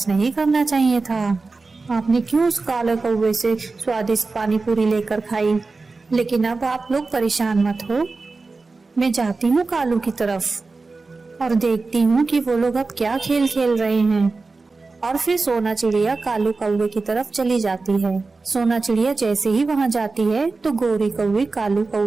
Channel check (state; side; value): quieter; left; 3.8 dB